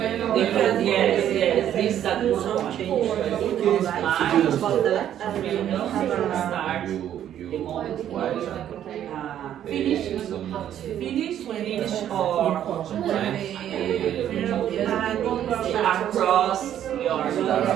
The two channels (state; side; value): quieter; left; 10.7 dB